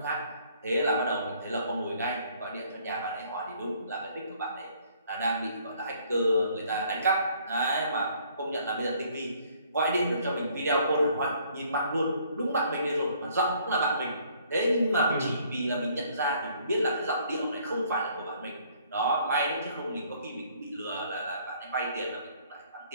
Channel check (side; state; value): both; inverted; correlation -0.62